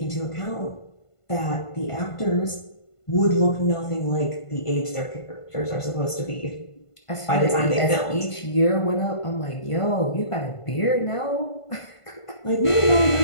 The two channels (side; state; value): right; late; 1.5 ms